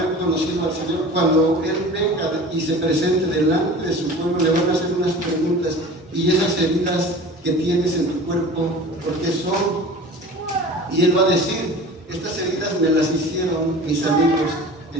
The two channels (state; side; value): normal; both; correlation 0.39